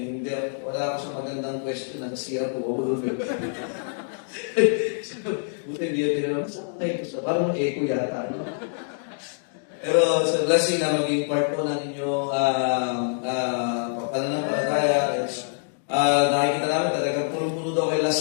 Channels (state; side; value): silent; right; digital silence